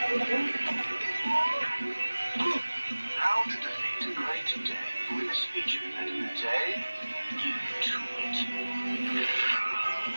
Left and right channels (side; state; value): both; inverted; correlation -1.00